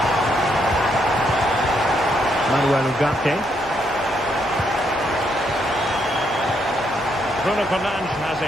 Manuel Ugarte. Bruno Fernandes has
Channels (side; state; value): both; normal; correlation 0.76